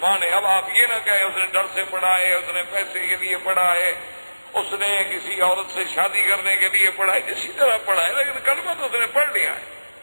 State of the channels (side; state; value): both; inverted; correlation -1.00